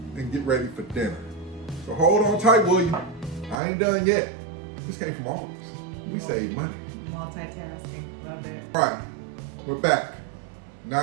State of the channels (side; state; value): left; drops out; at 3.6 s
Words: and get ready for dinner. So hold on tight, William. I ain't done yet. This came from Aldi. We save money. Multitasking. Love it. All right, we're back.